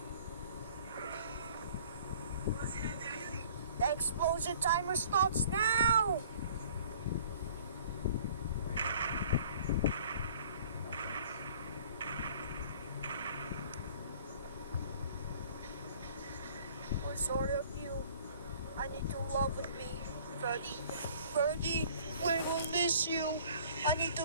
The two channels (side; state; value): both; inverted; correlation -0.52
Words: The explosion timer starts now! We're sorry of you. I need to love with me, Ferdy. Ferdy, we will miss you. I need to